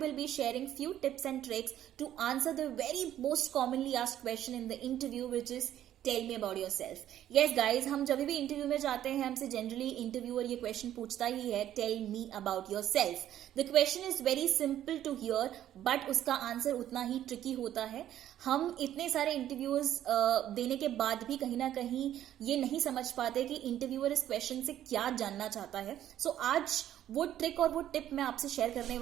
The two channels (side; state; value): left; quieter; 11.7 dB